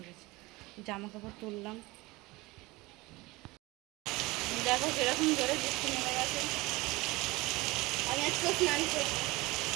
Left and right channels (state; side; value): quieter; left; 22.1 dB